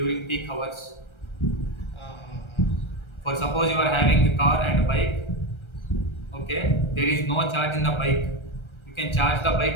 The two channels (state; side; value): late; right; 1.3 ms